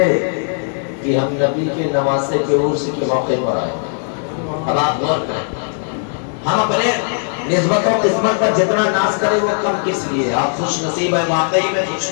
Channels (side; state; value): right; silent; digital silence